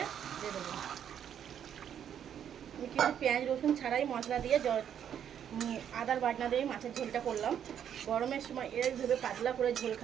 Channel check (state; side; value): quieter; left; 9.2 dB